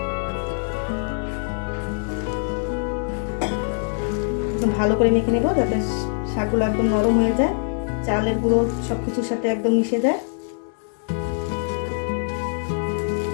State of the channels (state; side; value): silent; right; digital silence